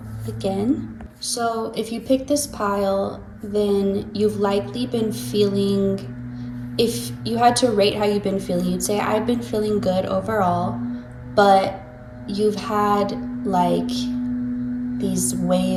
again. So if you picked this pile, then you've likely been feeling if you had to rate how you've been feeling, you'd say, I've been feeling good overall, but you've had like these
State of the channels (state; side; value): identical; both; correlation 1.00